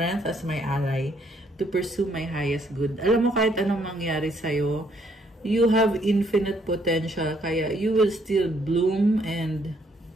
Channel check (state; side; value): normal; both; correlation 0.69